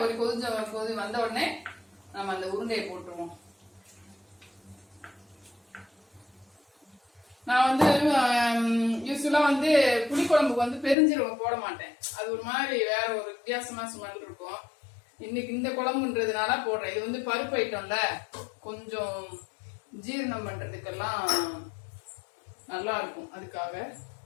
ஒரு கொதி வந்த உடனே நம்ம அந்த உருண்டையை போட்டுருவோம். நான் வந்து யூஸ்வலா வந்து புளிக்குழம்புக்கு வந்து பெருஞ்சீரகம் போட மாட்டேன். அது ஒரு மாதிரி வேற ஒரு வித்தியாசமா ஸ்மெல் இருக்கும். இன்னைக்கு இந்த குழம்புன்றதுனால போடுறேன். இது வந்து பருப்பு ஐட்டம்ல, கொஞ்சம் ஜீரணம் பண்றதுக்கெல்லாம் நல்லா இருக்கும், அதுக்காக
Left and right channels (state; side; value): drops out; right; at 11.0 s